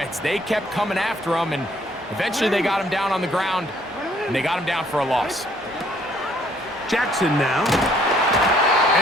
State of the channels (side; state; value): both; normal; correlation 0.63